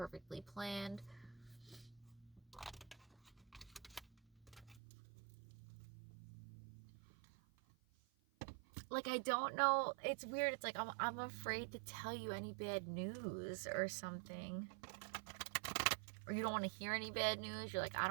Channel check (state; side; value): drops out; left; at 4.8 s